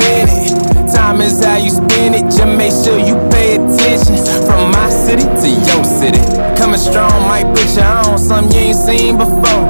Time is how you spend it, just make sure you pay attention. From my city to your city, coming strong might put you on something you ain't seen before.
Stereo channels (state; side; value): inverted; both; correlation -1.00